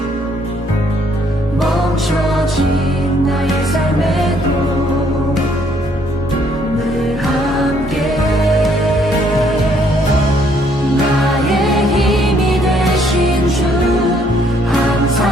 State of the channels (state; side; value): normal; both; correlation 0.67